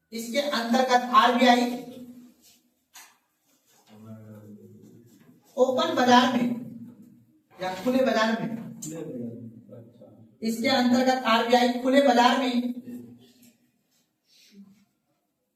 इसके अंतर्गत RBI ओपन बाजार में या खुले बाजार में, इसके अंतर्गत RBI खुले बाजार में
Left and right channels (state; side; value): identical; both; correlation 1.00